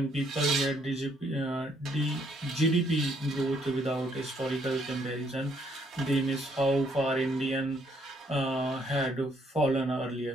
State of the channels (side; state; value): both; normal; correlation 0.69